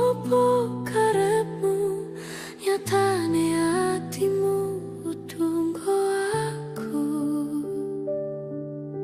karepmu, nyatane hatimu tunggu aku.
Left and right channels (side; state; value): both; identical; correlation 1.00